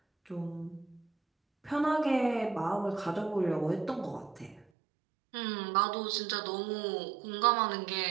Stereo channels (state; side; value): drops out; left; at 4.7 s